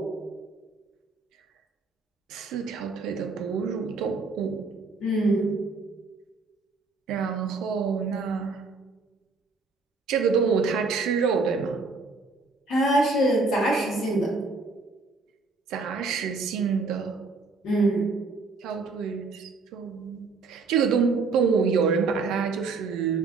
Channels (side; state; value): left; quieter; 4.0 dB